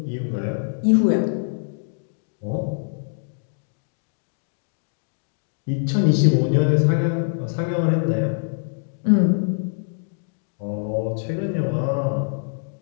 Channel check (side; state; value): right; silent; digital silence